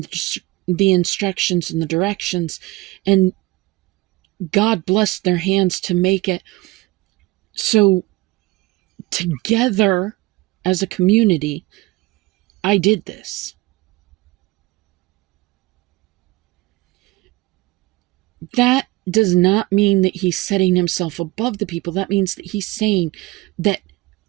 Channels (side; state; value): left; quieter; 21.0 dB